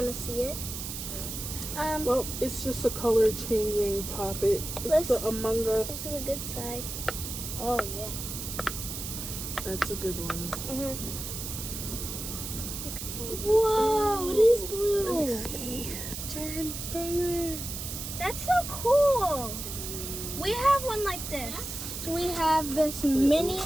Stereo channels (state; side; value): noise; right; hiss, 7 dB below the sound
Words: of see it. Well, it's just a color changing poppet. It's the Among This Us. is a good side. Oh yeah. That's a good one. Whoa, it is blue. See. Turn color. That's so cool. We have one like this. We have this mini